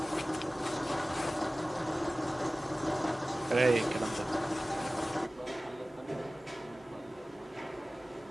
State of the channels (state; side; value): normal; both; correlation 0.97